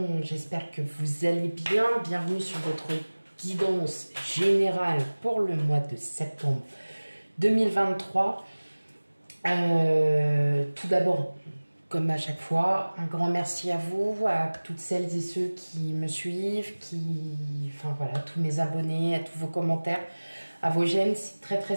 J'espère que vous allez bien. Bienvenue sur votre guidance générale pour le mois de septembre 2023. Tout d'abord, comme à chaque fois, un grand merci à vous, à toutes celles et ceux qui me suivent, enfin voilà, tous mes abonnés, à tous vos commentaires, à vos j'aime, c'est très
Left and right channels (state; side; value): inverted; both; correlation -1.00